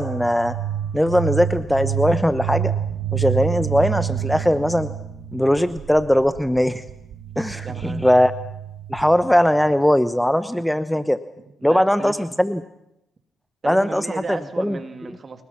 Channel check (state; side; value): normal; both; correlation 0.92